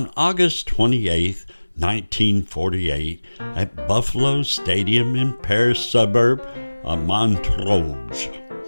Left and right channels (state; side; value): inverted; both; correlation -1.00